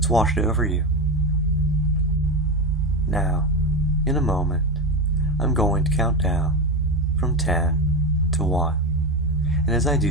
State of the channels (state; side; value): normal; both; correlation 0.16